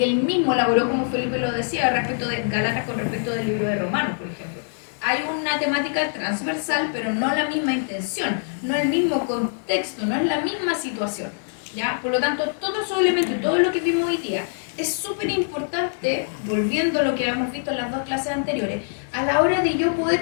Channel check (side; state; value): right; silent; digital silence